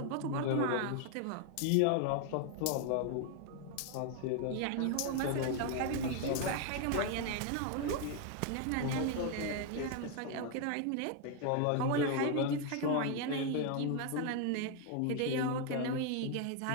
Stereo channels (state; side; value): different; both; correlation 0.00